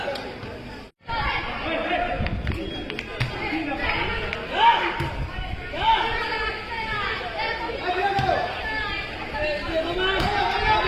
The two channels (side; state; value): both; identical; correlation 1.00